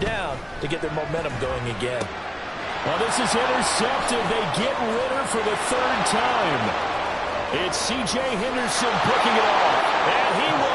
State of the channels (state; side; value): identical; both; correlation 1.00